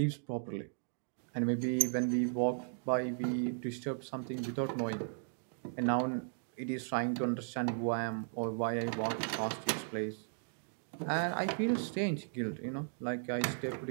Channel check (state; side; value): silent; left; digital silence